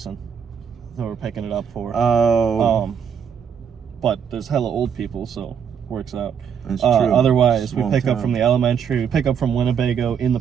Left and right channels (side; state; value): left; quieter; 7.5 dB